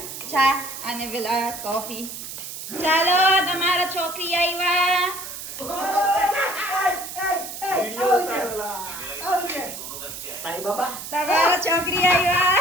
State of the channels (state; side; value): noise; right; hiss, 9 dB below the sound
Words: Cha, ane pala, coffee. Chalo, tamara chokri aywa. Sa iba ba? Tamara chokri